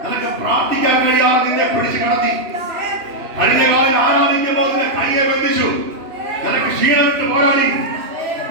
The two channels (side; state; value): left; late; 3.0 ms